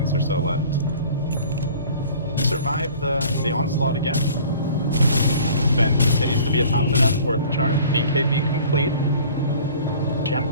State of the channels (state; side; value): inverted; both; correlation -0.48